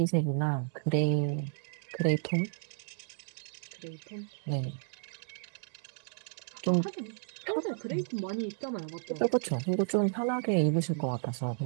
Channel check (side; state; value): left; silent; digital silence